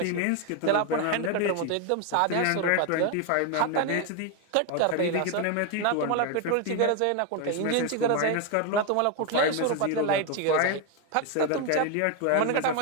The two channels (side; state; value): both; different; correlation 0.01